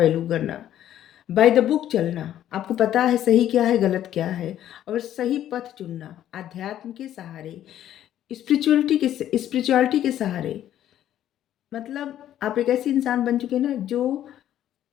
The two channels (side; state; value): right; quieter; 11.6 dB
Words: करना, बाय द बुक चलना, आपको पता है सही क्या है गलत क्या है, और सही पथ चुनना, अध्यात्म के सहारे, स्पिरिचुअलिटी के सहारे। मतलब आप एक ऐसी इंसान बन चुके हैं ना, जो